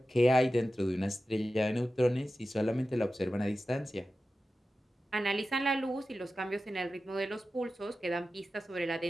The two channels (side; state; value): both; normal; correlation 0.93